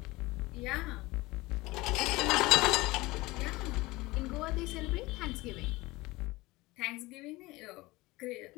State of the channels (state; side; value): quieter; right; 21.1 dB